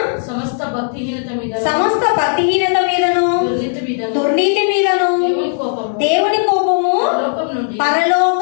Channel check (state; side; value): silent; right; digital silence